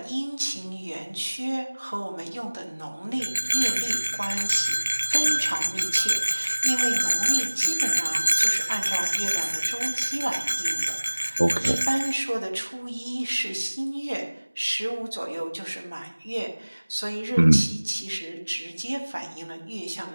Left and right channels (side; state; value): both; inverted; correlation -1.00